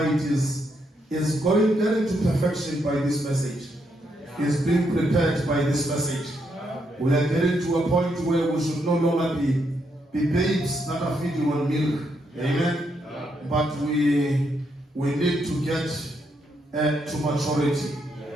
is getting to perfection by this message. Is being prepared by this message. We are getting to a point where we should no longer be babes that are feeding on milk. Amen. But we need to get to maturity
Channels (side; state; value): both; normal; correlation 0.78